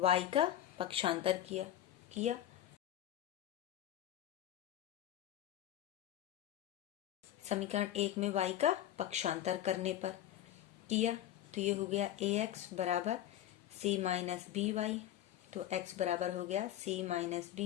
का पक्षांतर किया, समीकरण 1 में y का पक्षांतर करने पर किया, तो ये हो गया ax बराबर c माइनस बी वाई, तो x बराबर हो गया c माइनस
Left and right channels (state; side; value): quieter; right; 12.2 dB